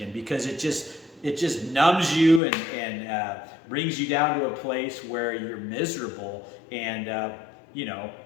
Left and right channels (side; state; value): right; drops out; at 2.4 s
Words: because it just numbs you and brings you down to a place where you're miserable, and